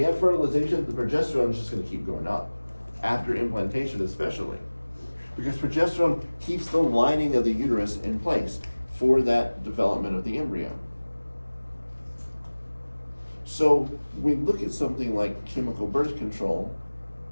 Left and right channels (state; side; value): inverted; both; correlation -1.00